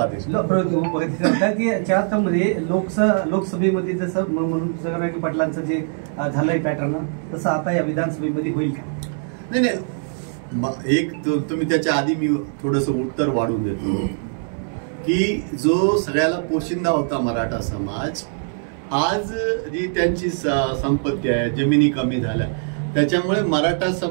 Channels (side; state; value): left; silent; 64 dB below the other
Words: की याच्यामध्ये लोकसभेमध्ये जसं म्हणून जगनागी पाटलांचं जे झालंय पॅटर्न, तसं आता या विधानसभेमध्ये होईल का? नाही, एक तुम्ही त्याच्या आधी मी थोडस उत्तर वाढून देतो की जो सगळ्याला पोशिंदा होता मराठा समाज, आज जी त्यांची संपत्ती आहे, जमिनी कमी झाल्या, त्याच्यामुळे मराठा